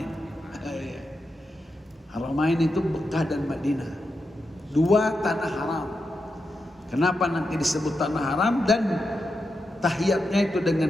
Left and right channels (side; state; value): both; normal; correlation 0.87